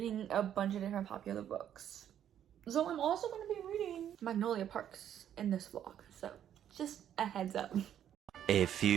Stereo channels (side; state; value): left; quieter; 10.1 dB